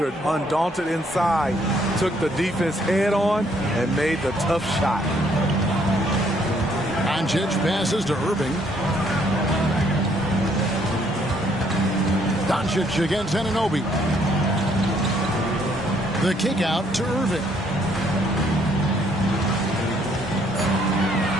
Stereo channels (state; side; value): normal; both; correlation 0.67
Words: undaunted inside, took the defense head on and made the tough shot. Doncic passes to Irving. Doncic against Anunoby. The kick out to Irving.